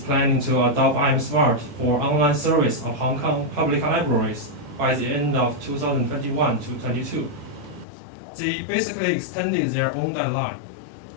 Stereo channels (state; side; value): drops out; right; at 7.9 s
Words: to adopt iAMSmart for online service of Hong Kong public libraries by the end of 2021 to 22. They basically extended their own deadline.